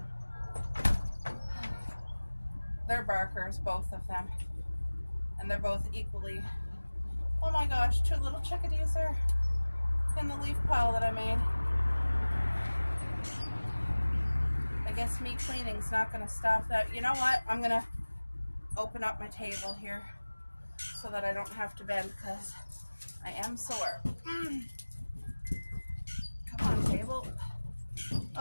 They're barkers, both of them. And they're both equally. Oh my gosh, 2 little chickadees are in the leaf pile that I made. I guess me cleaning's not going to stop that. You know what? I'm going to open up my table here so that I don't have to bend because I am sore. Come on, table.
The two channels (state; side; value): inverted; both; correlation -1.00